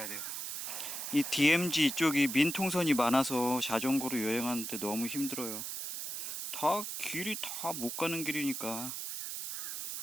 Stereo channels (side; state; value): right; noise; hiss, 5 dB below the sound